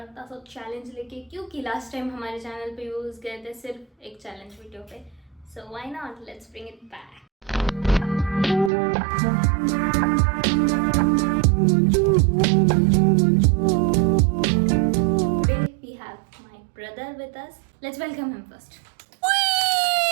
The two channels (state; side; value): drops out; left; at 8.7 s